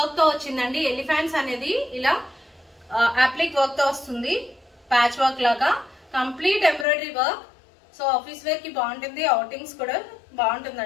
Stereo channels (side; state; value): right; drops out; at 6.9 s